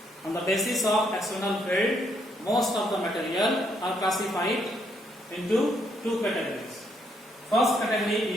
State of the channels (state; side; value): normal; both; correlation 0.73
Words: On the basis of external field, most of the material are classified into two categories. First